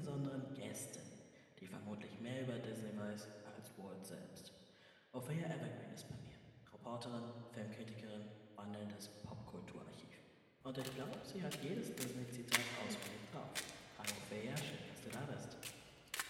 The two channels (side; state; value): both; identical; correlation 1.00